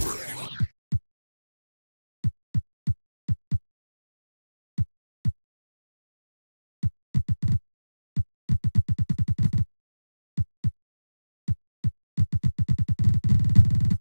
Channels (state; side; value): inverted; both; correlation -1.00